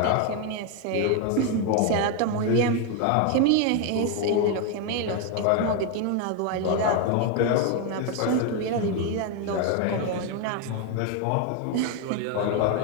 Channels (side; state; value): both; different; correlation 0.01